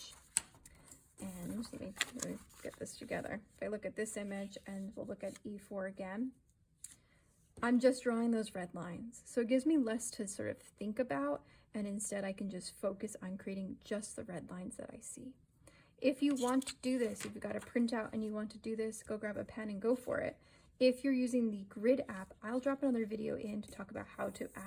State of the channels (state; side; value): identical; both; correlation 1.00